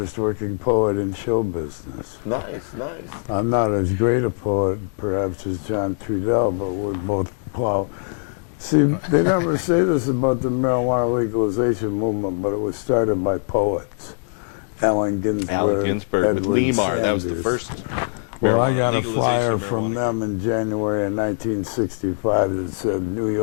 working poet in show business. Nice. I'm not as great a poet, perhaps, as John Trudell, but we're both plow. See, they never say this about the marijuana legalization movement, but it was started by poets. Allen Ginsberg, with Edward Lemar. That was the Sanders. first. Well, I got a legalization flyer of from marijuana. them in January of 1965 that said, New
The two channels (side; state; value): right; silent; digital silence